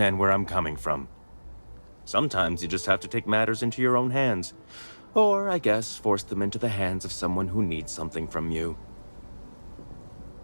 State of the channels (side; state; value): both; inverted; correlation -1.00